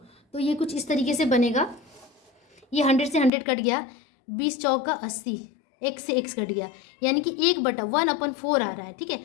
तो ये कुछ इस तरीके से बनेगा। ये 100 से 100 कट गया, 20 चौका 80, x से x कट गया, यानी कि 1/1/4 आ रहा है, ठीक है।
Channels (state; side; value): drops out; right; at 3.3 s